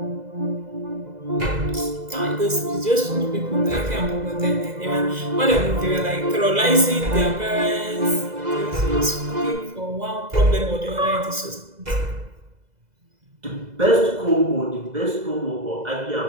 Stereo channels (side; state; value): left; late; 2.0 ms